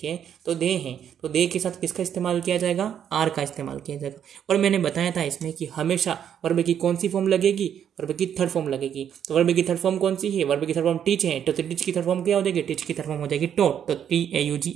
तो दे हैं, तो दे के साथ किसका इस्तेमाल किया जाएगा, आर का इस्तेमाल किया जाएगा। और मैंने बताया था इसमें कि हमेशा वर्ब की कौन सी फॉर्म लगेगी, वर्ब की थर्ड फॉर्म लगेगी। तो वर्ब की थर्ड फॉर्म कौन सी है, वर्ब की थर्ड फॉर्म टीच है, तो टीच की थर्ड फॉर्म क्या हो जाएगी, टीच की थर्ड फॉर्म हो जाएगी टॉट, तो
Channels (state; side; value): quieter; left; 9.0 dB